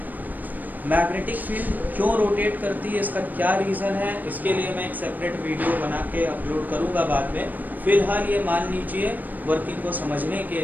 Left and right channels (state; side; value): late; left; 0.085 ms